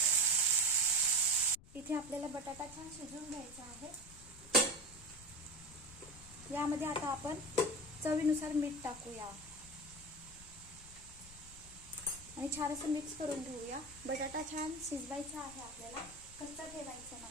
इथे आपल्याला बटाटा छान शिजवून घ्यायचा आहे। यामध्ये आता आपण चवीनुसार मीठ टाकूया आणि छान असं मिक्स करून घेऊया। बटाटा छान शिजवायचा आहे आपल्याला, कच्चा ठेवायचा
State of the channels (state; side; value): noise; left; rumble, 19 dB below the sound